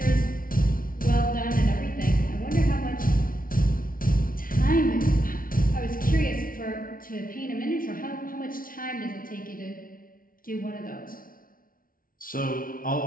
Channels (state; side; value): late; right; 0.41 ms